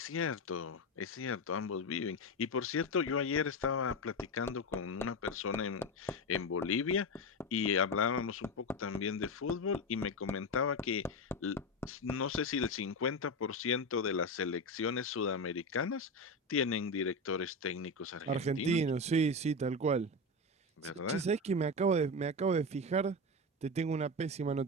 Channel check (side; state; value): both; normal; correlation 0.17